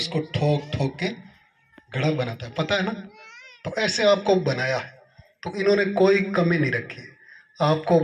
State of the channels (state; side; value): identical; both; correlation 1.00